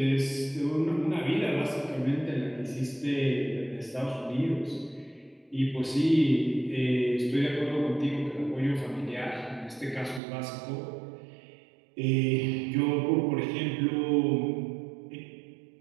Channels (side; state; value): left; drops out; at 10.2 s